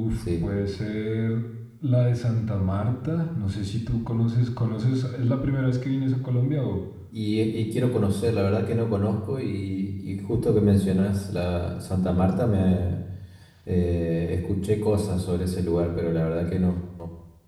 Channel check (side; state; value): both; identical; correlation 1.00